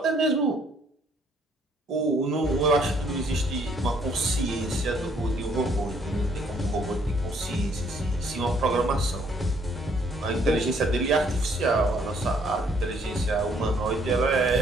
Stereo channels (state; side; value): normal; both; correlation 0.65